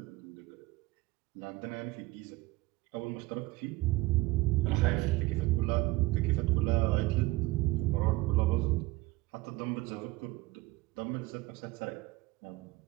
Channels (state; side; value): quieter; left; 20.0 dB